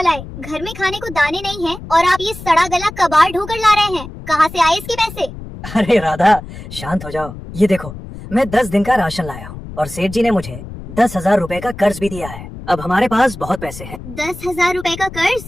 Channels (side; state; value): left; noise; rumble, 13 dB below the sound